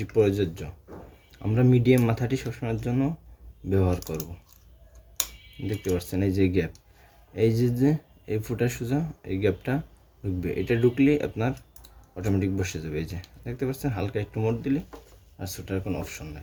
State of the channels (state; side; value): identical; both; correlation 1.00